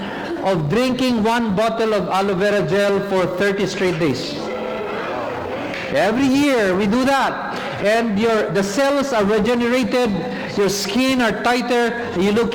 of drinking 1 bottle of aloe vera gel for 30 straight days. Every year we do that, and the cells are regenerated, your skin are tighter, you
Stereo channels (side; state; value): both; identical; correlation 1.00